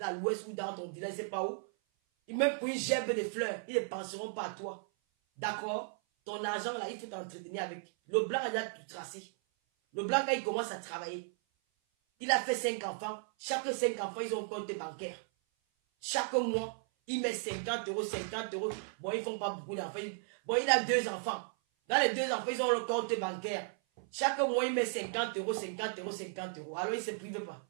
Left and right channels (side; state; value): left; silent; 54 dB below the other